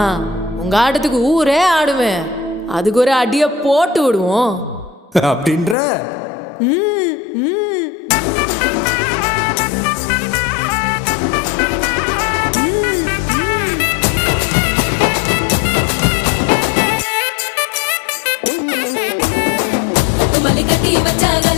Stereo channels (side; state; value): right; drops out; at 5.8 s